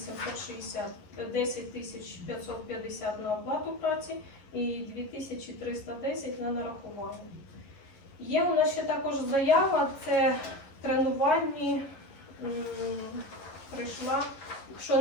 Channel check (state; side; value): late; right; 11 ms